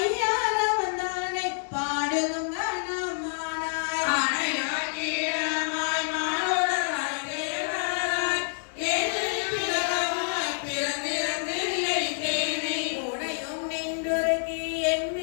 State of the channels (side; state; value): right; silent; digital silence